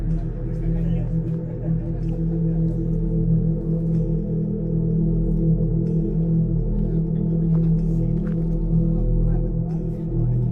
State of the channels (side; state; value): both; identical; correlation 1.00